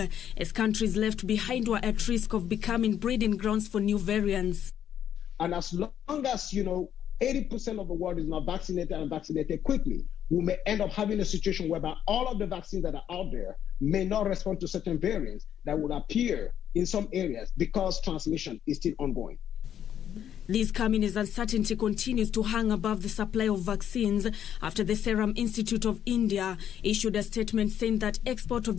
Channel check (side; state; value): right; quieter; 9.8 dB